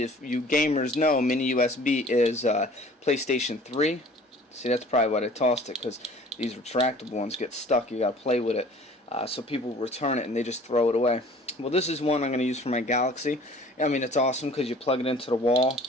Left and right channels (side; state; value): both; normal; correlation 0.49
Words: you gamers know, mini USB is PlayStation 3. See, that's probably why I tossed it, because these retractable ones get stuck. You gotta play with it, so people return it and they just throw it away. Well, this is one I'm going to use for my Galaxy. I mean, it's awesome because you plug it into the wall,